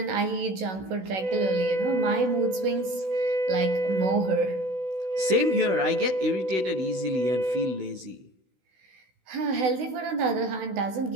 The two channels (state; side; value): late; left; 16 ms